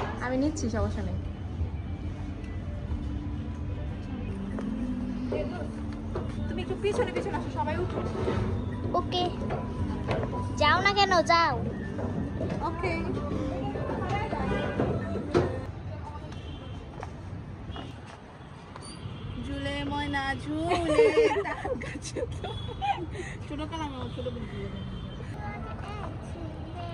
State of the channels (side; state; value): both; identical; correlation 1.00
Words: আমি নিচ্ছি, সমস্যা নেই। তুমি একটু পিছনে পিছনে আসো, সবাই উঠো। ওকে, যাও না কেন, যাও। ওকে। ঝুলে ময়না ঝুলে ছোট কালাম আমার ছোট